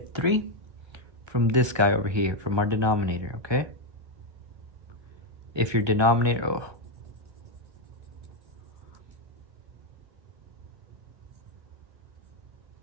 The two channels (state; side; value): late; left; 1.2 ms